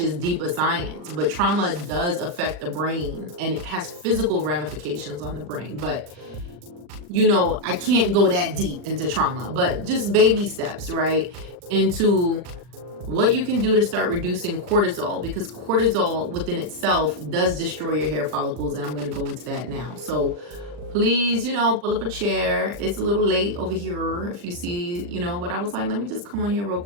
deeper science. But trauma does affect the brain, and it has physical ramifications on the brain. But you know, I can't go that deep into trauma, but just baby steps, right? Into what you can do to start reducing cortisol, because cortisol within itself does destroy your hair follicles. And I'm going to go into that now. So please, you know, pull up a chair. It's a little late over here if you see, you know, but I was like, let me just come on here real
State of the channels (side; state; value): left; late; 40 ms